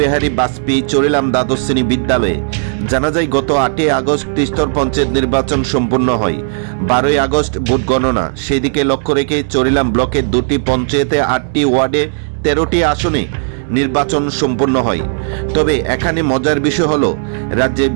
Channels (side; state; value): left; silent; digital silence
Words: বাজপেয়ী চরিলাম দ্বাদশ শ্রেণী বিদ্যালয়ে। জানা যায় গত ৮ই আগস্ট ত্রিস্তর পঞ্চায়েত নির্বাচন সম্পন্ন হয়। ১২ই আগস্ট ভোট গণনা। সেদিকে লক্ষ্য রেখে চরিলাম ব্লকের দুটি পঞ্চায়েতে ৮টি ওয়ার্ডে ১৩টি আসনে নির্বাচন সম্পন্ন হয়। তবে এখানে মজার বিষয় হলো রাজ্যে